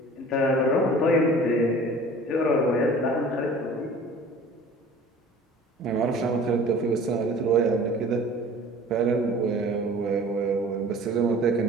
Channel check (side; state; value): both; normal; correlation 0.45